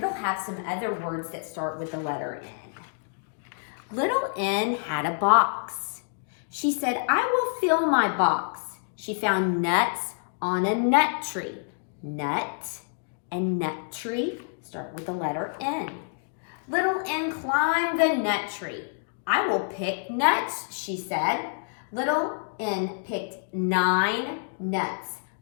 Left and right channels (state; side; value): silent; right; digital silence